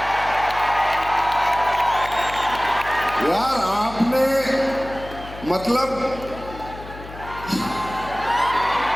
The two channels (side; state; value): left; noise; hum, 14 dB below the sound